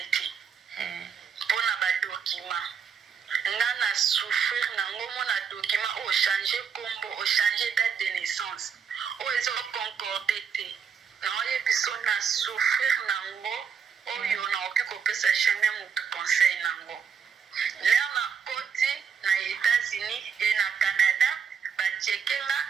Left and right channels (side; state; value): left; quieter; 6.8 dB